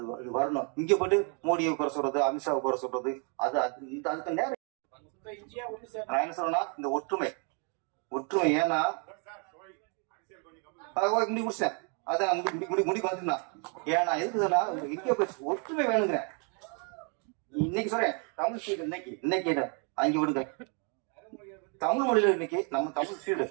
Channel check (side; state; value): left; quieter; 38.5 dB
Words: வரணும். இங்க போட்டு மோடியை குறை சொல்றது, அமித்ஷாவை குறை சொல்றது, அது அதுக்கு நேரம். நான் என்ன சொல்றேன்னா இந்த ஒற்றுமை ஏன்னா முடி முடிச்சேன். அதான் முடி பாத்தீங்கன்னா ஏன்னா எதுக்கு சொன்னா இந்தியா ஒற்றுமை வேணுங்கிறேன். இன்னைக்கு சொல்றேன் தமிழ் ஃபீல்டு இன்னைக்கு அங்க விடுங்க. தமிழ் மொழியில இன்னைக்கு நம்ம தமிழ் ஃபீல்டு